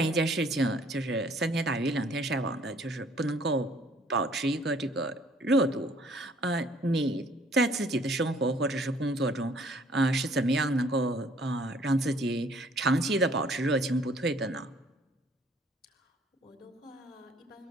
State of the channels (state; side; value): normal; both; correlation 0.59